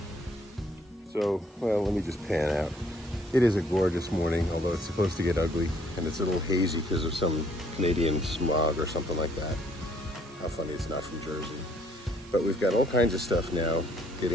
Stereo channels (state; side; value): normal; both; correlation 0.65